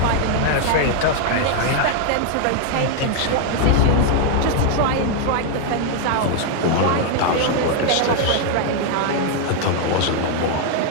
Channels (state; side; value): different; both; correlation 0.00